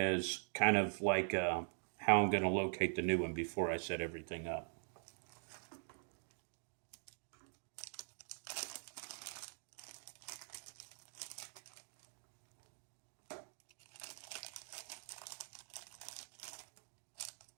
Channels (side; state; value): left; silent; digital silence